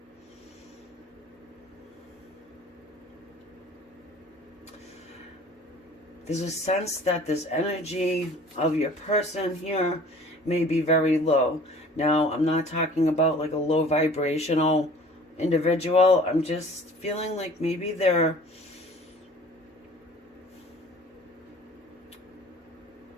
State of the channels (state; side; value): normal; both; correlation 0.48